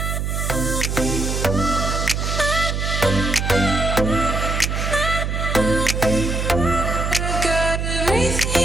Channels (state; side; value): noise; right; hum, 1 dB below the sound